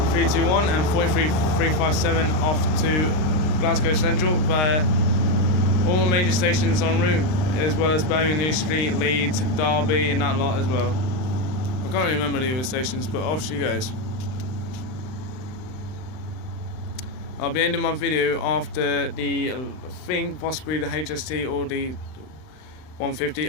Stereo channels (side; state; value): right; late; 39 ms